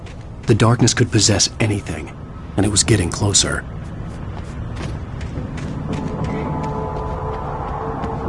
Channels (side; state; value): both; identical; correlation 1.00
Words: The darkness could possess anything, and it was getting closer.